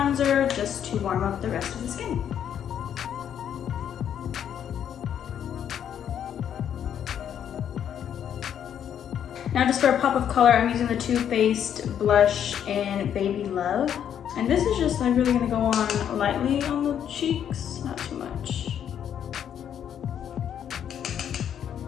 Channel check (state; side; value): quieter; right; 9.2 dB